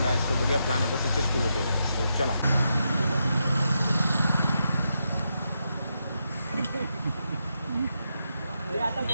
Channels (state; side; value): inverted; both; correlation -0.84